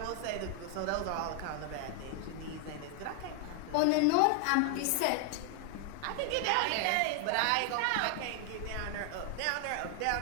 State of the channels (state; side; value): different; both; correlation 0.00